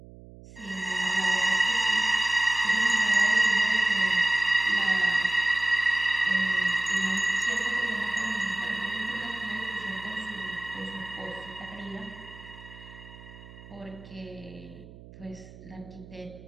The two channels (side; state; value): right; noise; hum, 19 dB below the sound